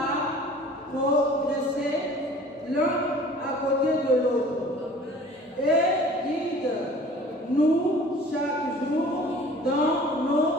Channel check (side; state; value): both; normal; correlation 0.47